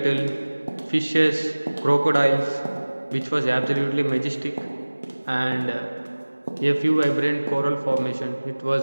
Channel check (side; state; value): both; inverted; correlation -1.00